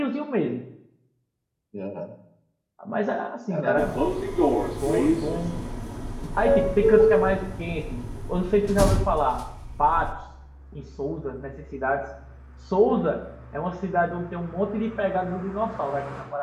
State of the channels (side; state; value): both; identical; correlation 1.00